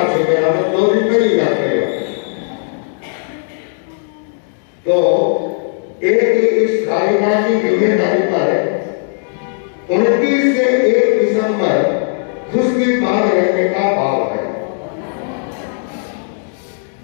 सके, हमें 2 दिन पहले ही याद करेगा। तो एक इस कार्यकाल की जिम्मेदारी पर 29 से 1 दिसंबर उसके बाद रहने का भाव है।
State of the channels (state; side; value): silent; right; digital silence